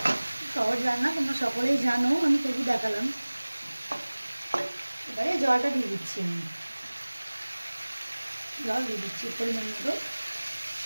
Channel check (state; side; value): inverted; both; correlation -1.00